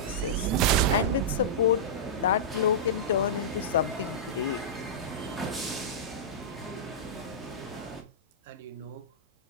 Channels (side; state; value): both; normal; correlation -0.14